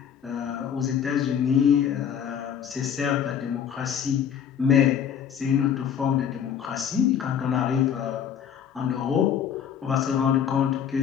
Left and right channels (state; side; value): quieter; right; 8.5 dB